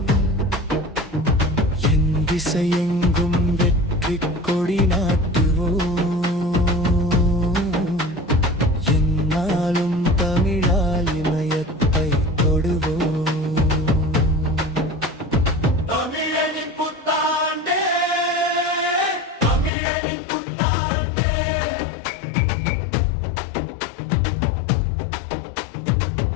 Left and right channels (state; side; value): drops out; right; at 19.7 s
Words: என் திசையெங்கும் வெற்றி கொடி நாட்டுவோம், என்னாலும் தமிழால் இமயத்தை தொடுவோம்.